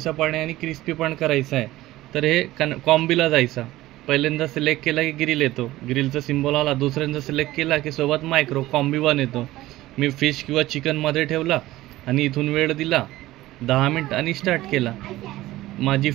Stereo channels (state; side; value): quieter; left; 16.7 dB